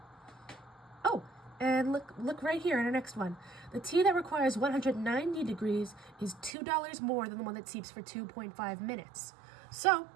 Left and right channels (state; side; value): drops out; left; at 6.6 s